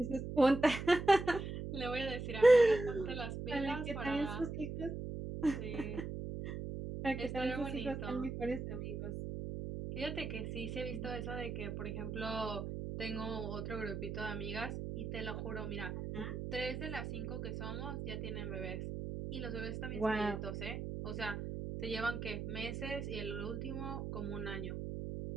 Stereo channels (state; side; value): noise; right; hum, 5 dB below the sound